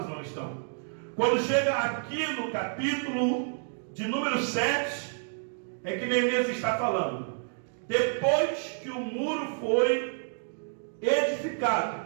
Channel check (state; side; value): silent; left; digital silence